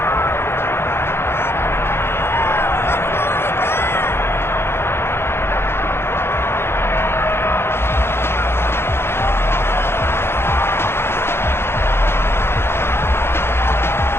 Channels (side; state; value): right; late; 0.12 ms